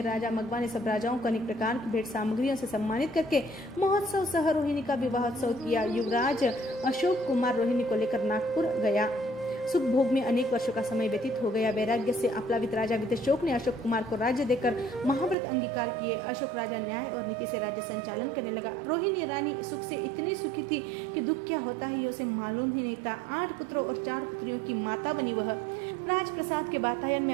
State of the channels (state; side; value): drops out; left; at 15.4 s